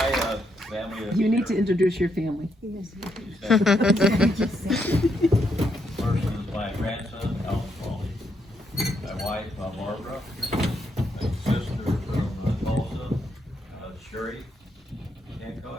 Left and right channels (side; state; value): both; normal; correlation 0.77